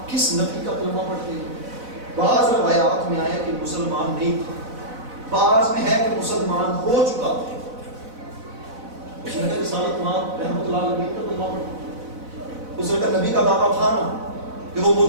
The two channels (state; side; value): late; left; 4.0 ms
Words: کس نبی کا کلمہ پڑھتے ہیں؟ بعض روایات میں آیا کہ مسلمان نہیں تھا، بعض میں ہے کہ مسلمان ہو چکا تھا۔ اس نے کہا رسالت مآب رحمۃ اللہ علیہ کا کلمہ پڑھتے؟ اس نے کہا نبی کا دعویٰ تھا نا کہ وہ